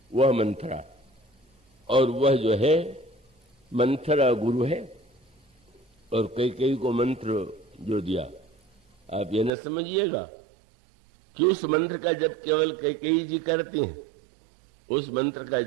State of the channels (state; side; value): drops out; left; at 9.5 s